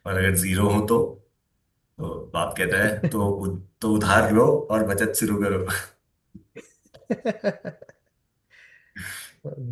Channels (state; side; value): identical; both; correlation 1.00